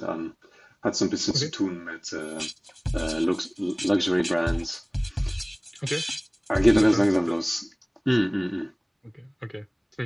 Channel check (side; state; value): both; identical; correlation 1.00